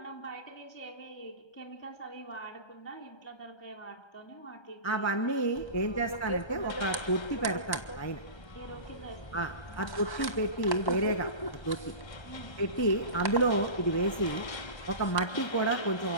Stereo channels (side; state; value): right; late; 1.3 ms